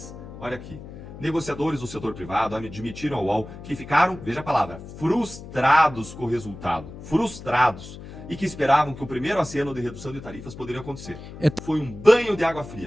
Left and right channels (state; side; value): noise; left; hum, 14 dB below the sound